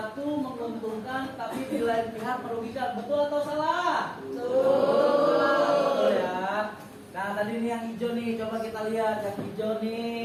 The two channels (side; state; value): both; identical; correlation 1.00